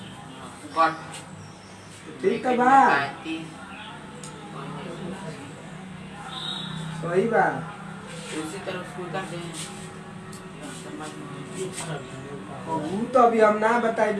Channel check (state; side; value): identical; both; correlation 1.00